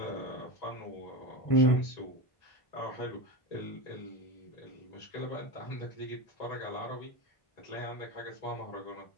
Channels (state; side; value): late; right; 1.8 ms